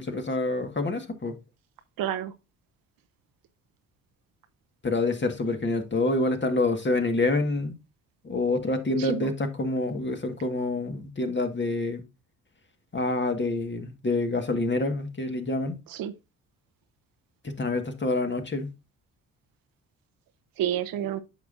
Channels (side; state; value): both; normal; correlation 0.39